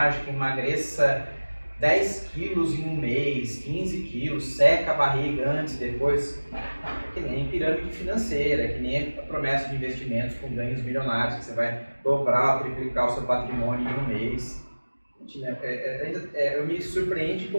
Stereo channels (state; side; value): inverted; both; correlation -1.00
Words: emagreça 10 quilos em um mês, 15 quilos, seca a barriga antes e depois, é que nem pirâmide financeira, é que nem a promessa de investimentos com ganhos milionários, que você vai dobrar ou triplicar o seu patrimônio em um mês. Eu me surpreende